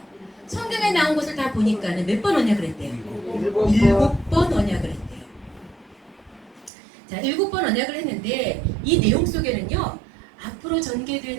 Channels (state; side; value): drops out; left; at 6.7 s